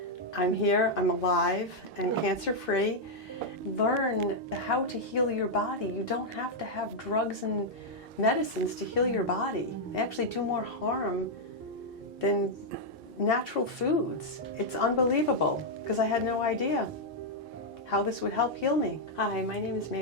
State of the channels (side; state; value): both; normal; correlation -0.03